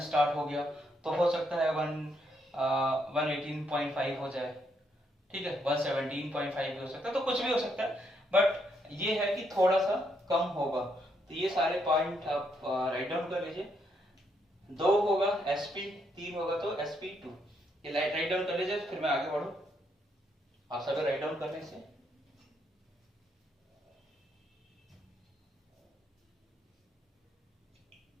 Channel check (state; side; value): normal; both; correlation 0.75